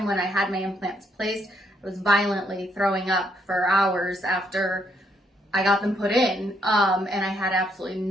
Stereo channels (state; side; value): normal; both; correlation 0.73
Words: when I had my implants placed, I was violently throwing up for hours after I got them put in, and I had absolutely